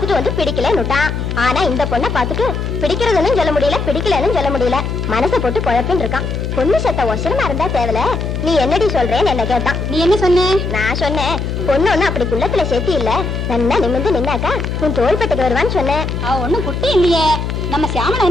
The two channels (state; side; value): noise; left; hum, 3 dB below the sound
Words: வந்து பிடிக்கலன்னுட்டான். ஆனா இந்த பொண்ணை பாத்துட்டு பிடிக்கிறதுன்னு சொல்ல முடியல, பிடிக்கலன்னு சொல்ல முடியல. மனசை போட்டு குழப்பின்னு இருக்கான். பொண்ணு சத்த ஒசரமா இருந்தா தேவல. நீ என்னடி சொல்றேன்னு என்ன கேட்டான். நீ என்ன சொன்ன? நான் சொன்னேன், பொண்ணு ஒண்ணு அப்படி குள்ளத்துல சேர்த்தி இல்ல, நல்லா நிமிந்து நின்னாக்கா உன் தோள்பட்டுக்கு வருவான்னு சொன்னேன். அவ ஒண்ணும் குட்டி இல்லையே. நம்ம சியாமலா